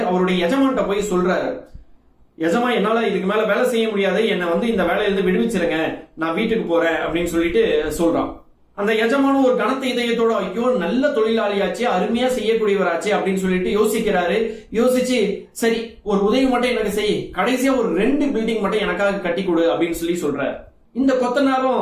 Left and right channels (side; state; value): both; identical; correlation 1.00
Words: அவருடைய எஜமான்ட்ட போய் சொல்றாரு, எஜமா என்னால இதுக்கு மேல வேலை செய்ய முடியாது, என்ன இந்த வேலையிலிருந்து விடுவிச்சிருங்க, நான் வீட்டுக்கு போறேன் அப்படின்னு சொல்லிட்டு சொல்றான். அந்த எஜமானும் ஒரு கனத்த இதயத்தோட, ஐயோ நல்ல தொழிலாளியாச்சு, அருமையா செய்யக்கூடியவராச்சு அப்படின்னு சொல்லிட்டு யோசிக்கிறாரு. யோசிச்சு, சரி ஒரு உதவி மட்டும் எனக்கு செய், கடைசியா ஒரு 2 பில்டிங் மட்டும் எனக்காக கட்டி கொடு அப்படின்னு சொல்லி சொல்றாரு. இந்த